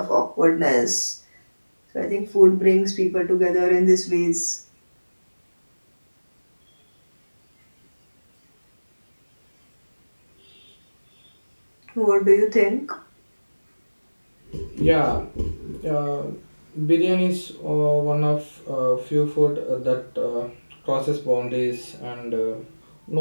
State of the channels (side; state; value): both; inverted; correlation -1.00